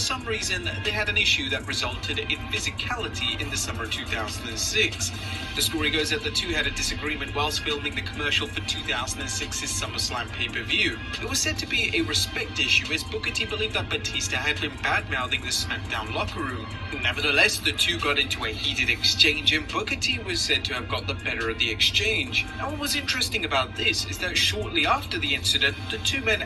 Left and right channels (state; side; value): identical; both; correlation 1.00